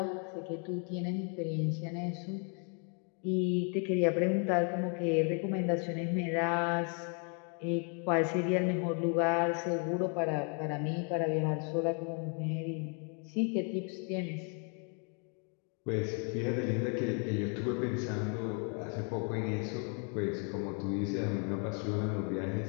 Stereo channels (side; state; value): right; quieter; 39.3 dB